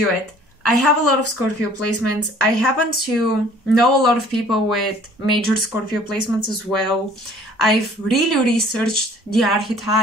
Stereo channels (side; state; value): both; normal; correlation 0.53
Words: it. I have a lot of Scorpio placements. I happen to know a lot of people with major Scorpio placements as well. I've really researched the